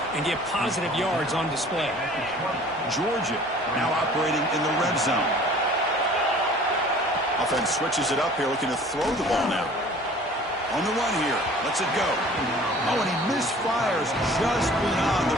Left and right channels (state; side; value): normal; both; correlation 0.48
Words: and get positive yards on display. Georgia now operating in the red zone. Offense switches it up here, looking to throw the ball now. On the run here. Lets it go. Oh, and he misfires just beyond the